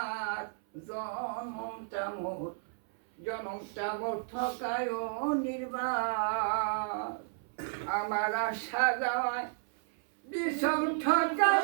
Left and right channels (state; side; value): silent; left; 56 dB below the other